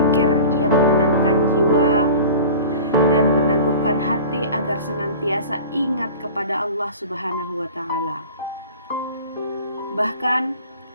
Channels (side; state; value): both; inverted; correlation -0.39